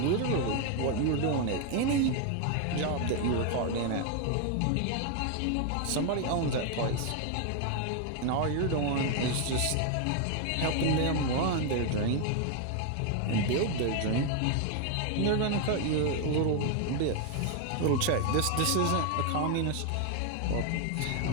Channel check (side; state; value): both; different; correlation 0.01